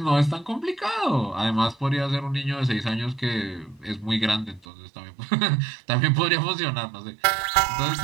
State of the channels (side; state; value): left; drops out; at 4.7 s